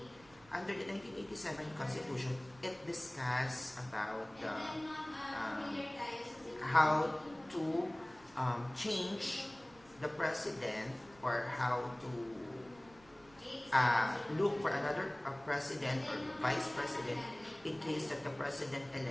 under the 1987 constitution, it discusses about how to change the president or how to look for another president or vice president in case that the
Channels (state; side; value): noise; right; rumble, 26 dB below the sound